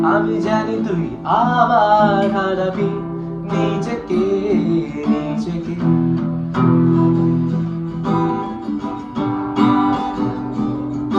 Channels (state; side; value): identical; both; correlation 1.00